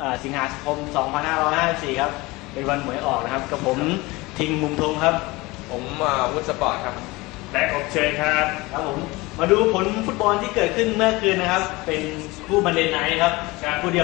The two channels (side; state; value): right; quieter; 22.3 dB